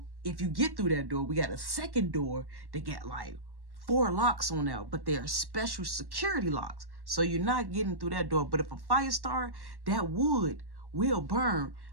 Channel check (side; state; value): left; late; 1.1 ms